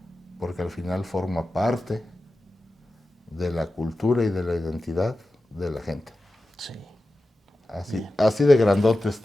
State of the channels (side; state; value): both; normal; correlation 0.93